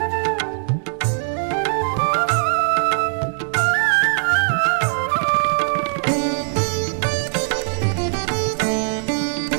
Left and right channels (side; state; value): left; silent; 65 dB below the other